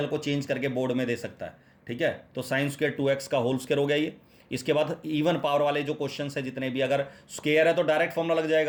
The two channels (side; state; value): both; identical; correlation 1.00